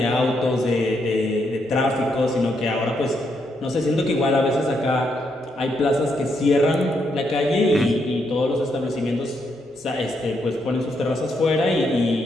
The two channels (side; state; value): both; normal; correlation 0.78